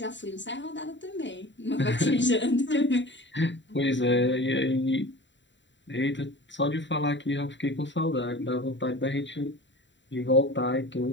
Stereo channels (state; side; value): late; right; 0.53 ms